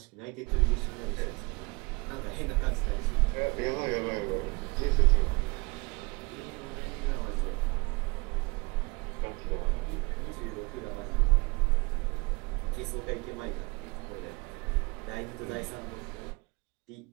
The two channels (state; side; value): quieter; left; 27.6 dB